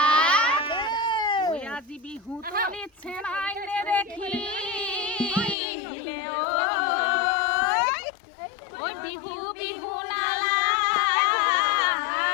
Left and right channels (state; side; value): drops out; right; at 5.6 s